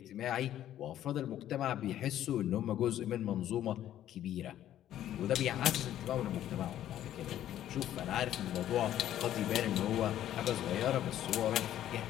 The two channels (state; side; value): quieter; right; 11.9 dB